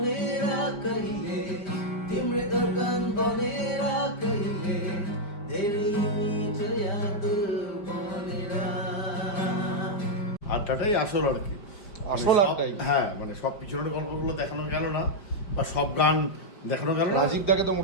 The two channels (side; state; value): right; late; 4.9 ms